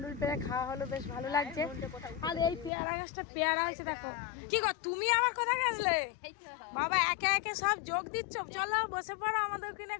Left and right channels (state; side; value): drops out; right; at 2.7 s